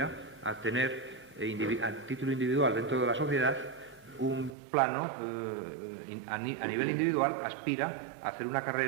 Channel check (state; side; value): drops out; left; at 4.5 s